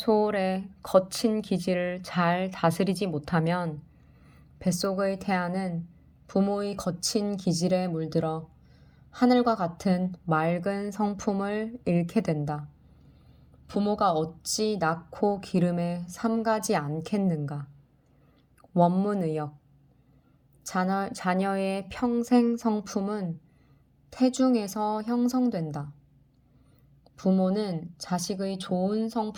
거친 기질을 잘 다스리지 못하면 뱃속의 태아는 부모의 거친 기질에 물들어 하늘과 같은 맑은 성품을 잃게 된다. 부모가 어찌 낳고 기름에 삼가지 않겠는가. 원문의역. 자녀의 평생 성품은 태중에서 형성된다. 부모는 자식의 좋은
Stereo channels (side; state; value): both; identical; correlation 1.00